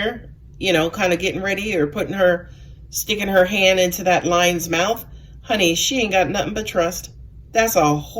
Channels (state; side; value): identical; both; correlation 1.00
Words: you know, kind of getting ready or sticking her hand into that lion's mouth. Honey, she ain't got nothing but trust. That's a